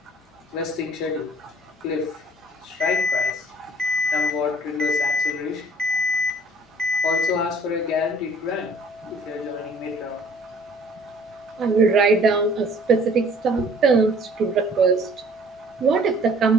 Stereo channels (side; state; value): both; normal; correlation 0.55